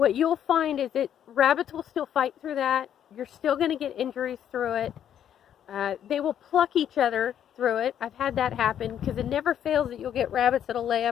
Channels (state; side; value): quieter; right; 9.8 dB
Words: you'll find is that rabbits will still fight through that. You're still going to get injuries through it. They will pluck each other through it. I've had that happen, because it never fails that you'll get rabbits that'll lay